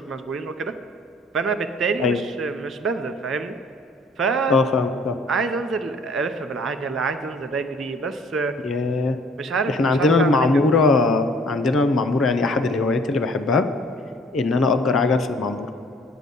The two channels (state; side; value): normal; both; correlation 0.55